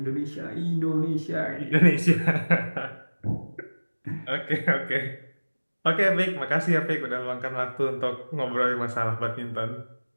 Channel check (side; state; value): both; inverted; correlation -1.00